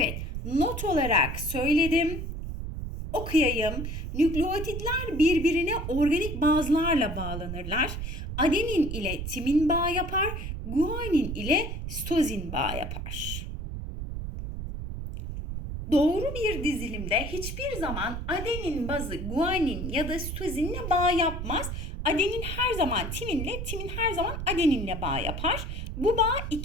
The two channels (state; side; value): noise; right; rumble, 5 dB below the sound